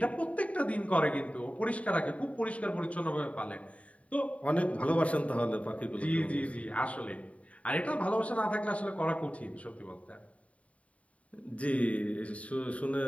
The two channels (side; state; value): right; late; 0.066 ms